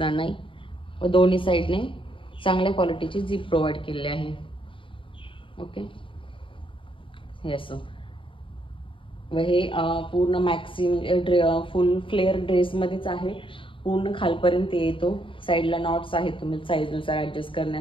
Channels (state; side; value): late; right; 0.25 ms